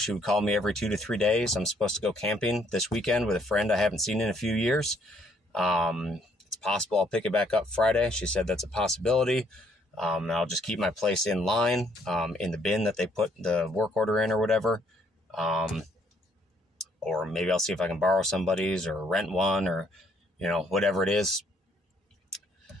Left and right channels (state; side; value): normal; both; correlation 0.67